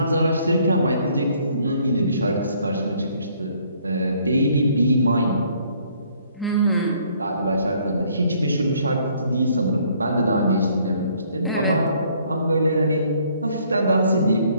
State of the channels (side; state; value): both; inverted; correlation -0.64